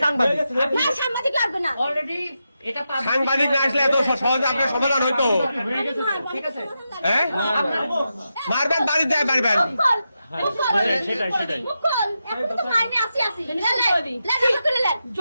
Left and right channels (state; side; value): inverted; both; correlation -0.88